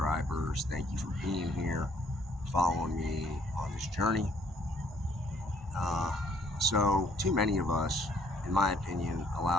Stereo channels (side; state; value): both; normal; correlation 0.64